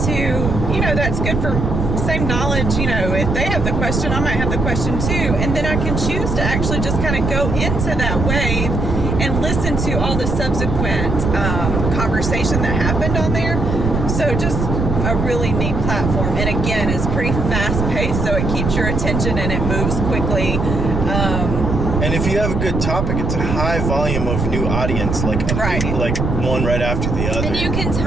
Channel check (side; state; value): right; noise; rumble, 1 dB below the sound